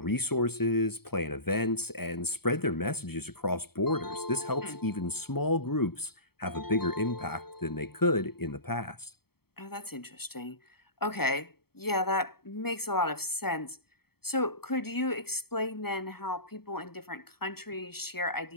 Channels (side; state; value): right; late; 0.95 ms